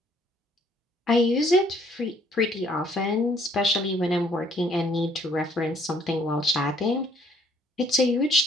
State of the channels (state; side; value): normal; both; correlation 0.63